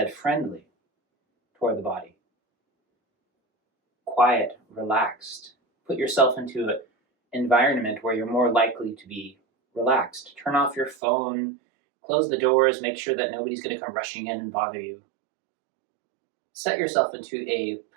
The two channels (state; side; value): drops out; left; at 11.0 s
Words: friendly toward the body. Quiet, relaxed. Put yourself into an environment where you're more likely to be relaxed. Turn off your phone, close the doors, make sure that nobody's going to come rushing in and bother you. Set yourself into a